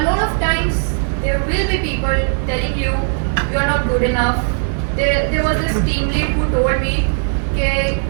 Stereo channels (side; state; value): left; silent; 63 dB below the other